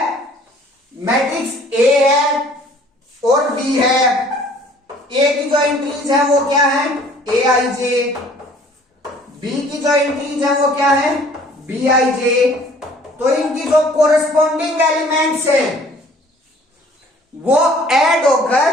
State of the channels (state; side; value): normal; both; correlation 0.54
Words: मैट्रिक्स ए है और बी है। ए की जो एंट्रीज है वो क्या है, Aij। बी की जो एंट्रीज है वो क्या है, Bij। तो इनकी जो कोरस्पॉन्डिंग एलिमेंट्स हैं वो ऐड होकर